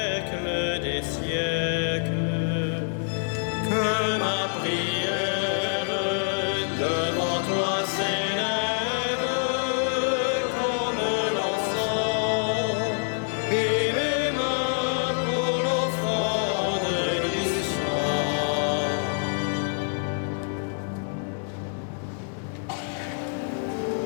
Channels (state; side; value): silent; right; digital silence